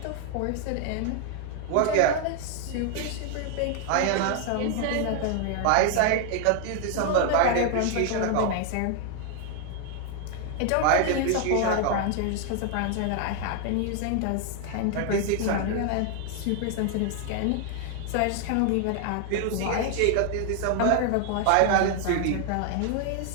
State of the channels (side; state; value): both; different; correlation 0.00